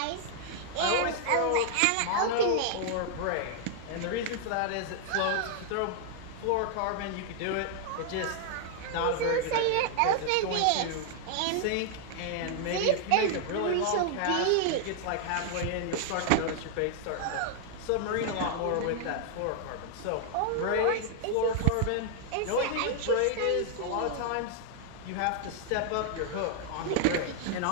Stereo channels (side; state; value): both; different; correlation -0.01